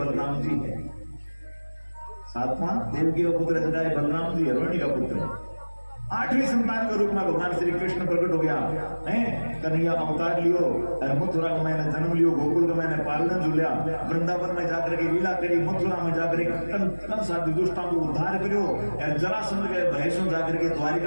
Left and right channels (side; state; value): both; inverted; correlation -1.00